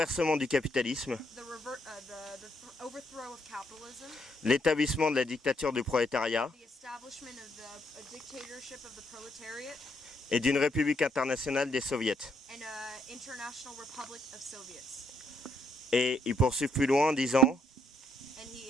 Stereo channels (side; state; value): both; normal; correlation 0.73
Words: du capitalisme, the overthrow of capitalism, l'établissement de la dictature du prolétariat the establishment of the dictatorship of the proletariat, et d'une république internationale des soviets. and international republic of Soviets. Et il poursuit plus loin en disant And